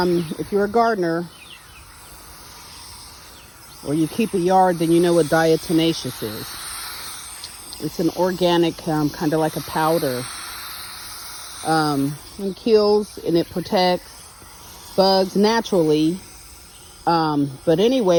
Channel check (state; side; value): identical; both; correlation 1.00